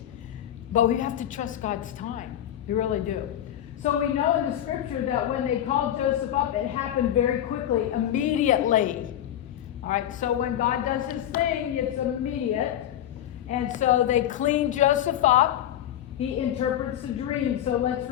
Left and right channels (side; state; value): right; quieter; 11.5 dB